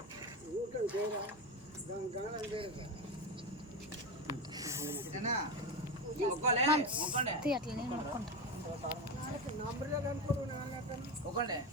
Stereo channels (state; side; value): normal; both; correlation 0.17